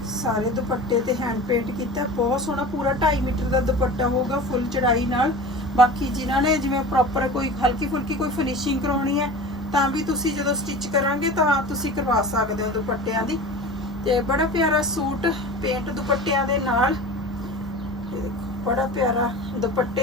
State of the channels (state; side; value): normal; both; correlation 0.35